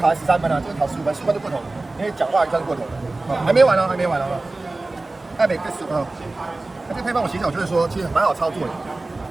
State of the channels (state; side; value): quieter; left; 3.1 dB